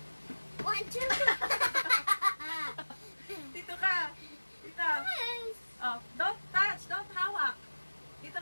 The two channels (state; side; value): inverted; both; correlation -1.00